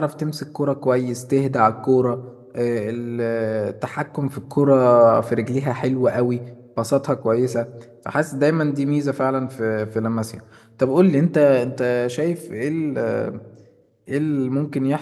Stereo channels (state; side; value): identical; both; correlation 1.00